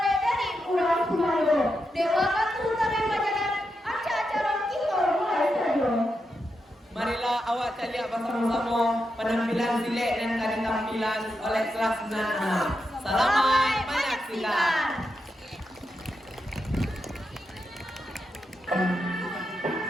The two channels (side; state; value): both; normal; correlation 0.86